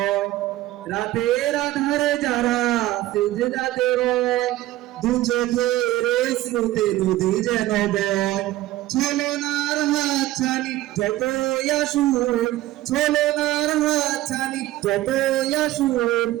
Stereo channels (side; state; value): left; quieter; 15.9 dB